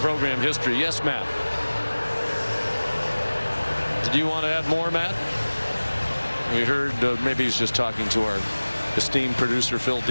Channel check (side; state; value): both; inverted; correlation -1.00